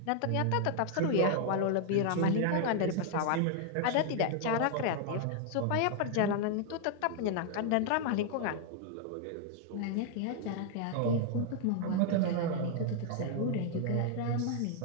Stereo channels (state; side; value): different; both; correlation -0.01